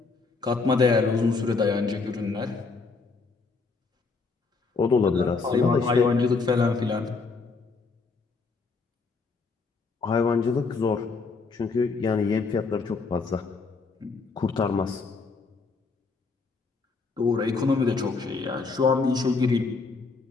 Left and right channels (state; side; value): quieter; right; 4.4 dB